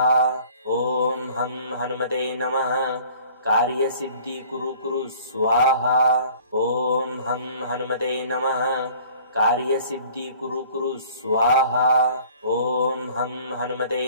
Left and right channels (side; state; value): both; inverted; correlation -0.50